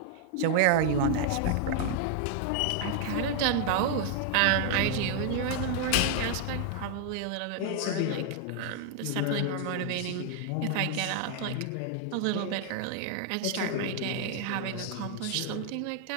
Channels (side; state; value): both; different; correlation 0.00